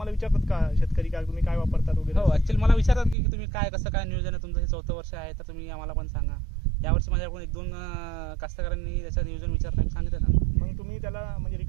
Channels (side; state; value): left; drops out; at 3.2 s